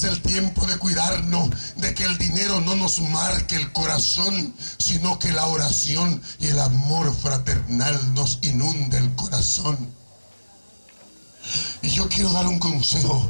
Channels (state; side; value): inverted; both; correlation -1.00